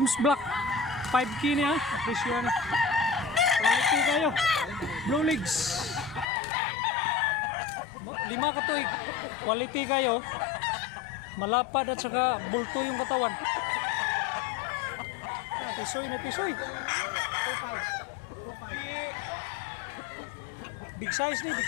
Black 5K niya, presyo niya. Quality kayo. Blue Legs 5 katuig. Quality kayo. Malapad at saka bulto yung katawan. Tisoy na tisoy. Big size nih,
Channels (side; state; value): right; drops out; at 6.2 s